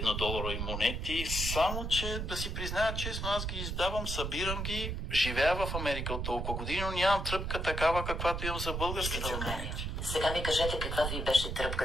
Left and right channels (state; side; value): noise; right; rumble, 3 dB below the sound